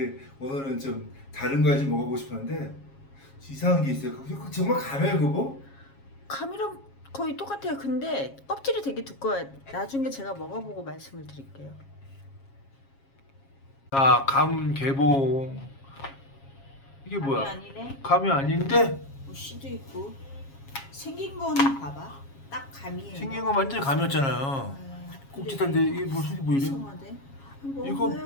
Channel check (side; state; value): right; late; 7.3 ms